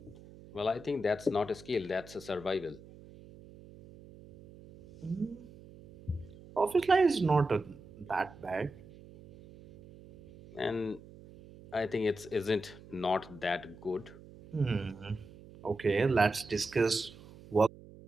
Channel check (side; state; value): right; noise; hum, 20 dB below the sound